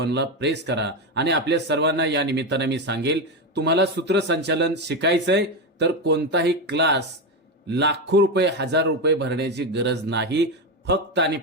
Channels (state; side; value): normal; both; correlation 0.13